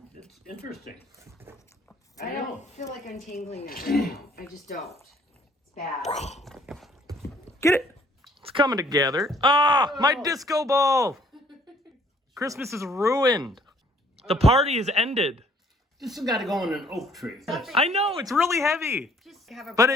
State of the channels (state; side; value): normal; both; correlation 0.60